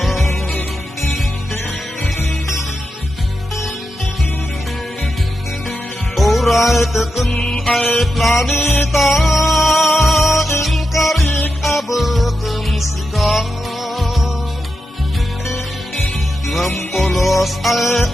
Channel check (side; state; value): both; normal; correlation 0.88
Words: Oray tekun ay planeta inkarik abekem sika. Ngampolos ay